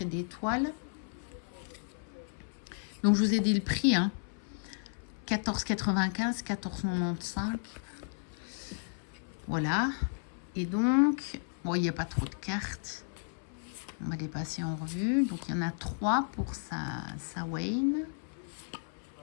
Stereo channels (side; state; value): right; silent; 55 dB below the other